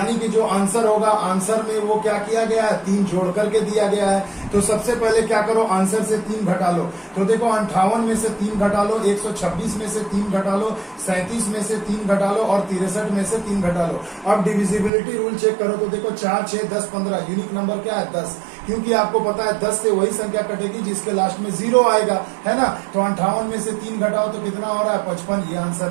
कि जो आंसर होगा, आंसर में वो क्या किया गया है, 3 जोड़ करके दिया गया है। तो सबसे पहले क्या करो, आंसर से 3 घटा लो। तो देखो 58 में से 3 घटा लो, 126 में से 3 घटा लो, 37 में से 3 घटा लो और 63 में से 3 घटा लो। अब डिविजिबिलिटी रूल चेक करो। तो देखो 4, 6, 10, 15, यूनिक नंबर क्या है, 10, क्योंकि आपको पता है 10 से वही संख्या कटेगी जिसके लास्ट में 0 आएगा, है ना। तो 58 में से 3 घटाओ तो कितना हो रहा है, 55, ये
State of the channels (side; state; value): left; drops out; at 14.9 s